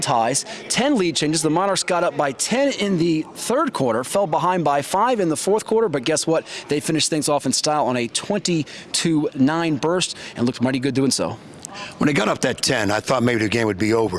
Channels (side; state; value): both; identical; correlation 1.00